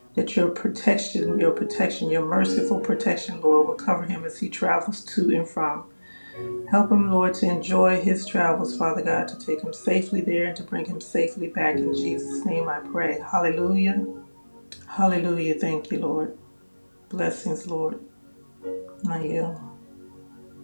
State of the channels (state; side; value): inverted; both; correlation -1.00